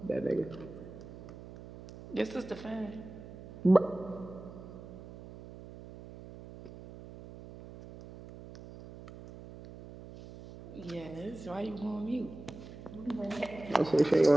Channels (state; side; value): noise; right; hum, 15 dB below the sound